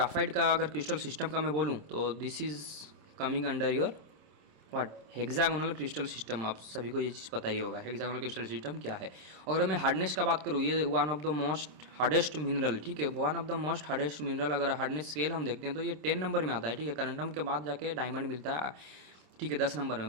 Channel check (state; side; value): late; left; 27 ms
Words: का अगर क्रिस्टल सिस्टम का मैं बोलूँ तो this is coming under your what hexagonal crystal system. आप सभी को ये चीज़ पता ही होगा हेक्सागोनल क्रिस्टल सिस्टम क्या है। अगर मैं हार्डनेस का बात करूँ, ये one of the most hardest mineral, ठीक है, one of the most hardest mineral. अगर हार्डनेस स्केल हम देखते हैं तो ये 10 नंबर में आता है, ठीक है। करंडम के बाद जाके डायमंड मिलता है, ठीक है, 10 नंबर में।